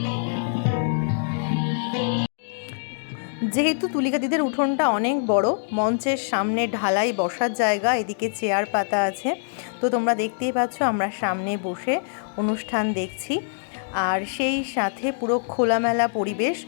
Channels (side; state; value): right; silent; digital silence